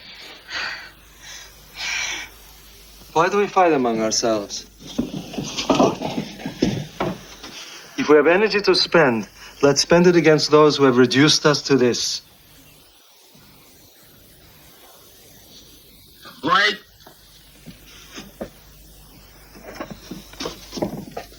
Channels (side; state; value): both; identical; correlation 1.00